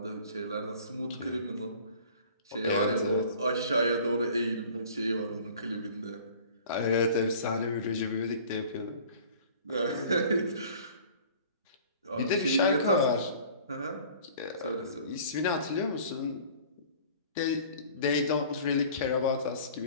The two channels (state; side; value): inverted; both; correlation -0.47